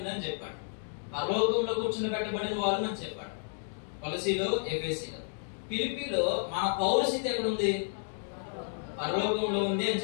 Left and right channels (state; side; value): silent; right; digital silence